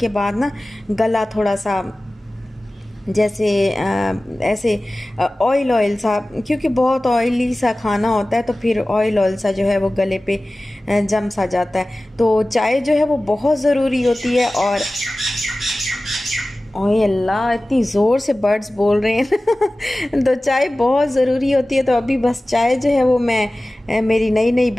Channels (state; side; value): normal; both; correlation 0.97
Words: बाद ना गला थोड़ा सा जैसे ऐसे ऑयल ऑयल सा, क्योंकि बहुत ऑयली सा खाना होता है, तो फिर ऑयल ऑयल सा जो है वो गले पे जम सा जाता है। तो चाय जो है वो बहुत ज़रूरी होती है। और ओए अल्लाह, इतनी ज़ोर से बर्ड्स बोल रहे हैं तो चाय बहुत ज़रूरी होती है। तो अभी बस चाय जो है वो मैं मेरी नई नई